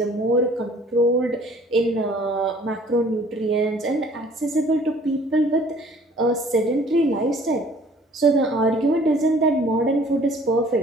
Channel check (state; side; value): normal; both; correlation 0.54